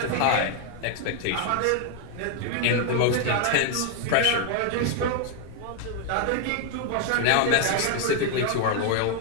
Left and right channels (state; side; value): different; both; correlation 0.00